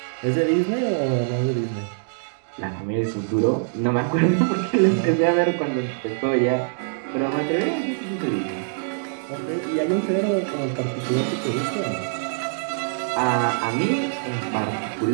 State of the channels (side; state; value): left; silent; digital silence